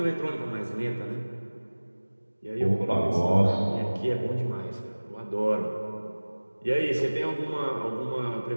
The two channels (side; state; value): both; inverted; correlation -1.00